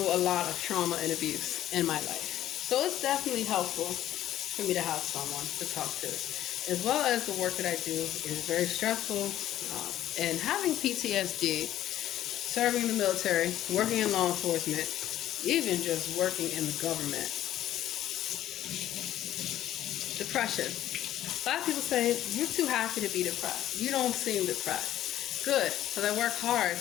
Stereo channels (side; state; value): right; quieter; 12.8 dB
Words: a lot of trauma and abuse in my life. So it's definitely helpful for me to have someone to talk to. As well as the work that I do is very stressful. And having PTSD, serving in the military, working in law enforcement, even just working in the government. Depression. A lot of people say, you're too happy to be depressed. You don't seem depressed. Good, because I work hard